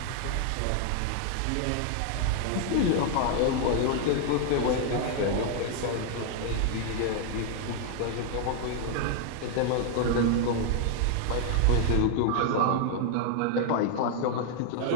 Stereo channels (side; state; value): both; different; correlation 0.00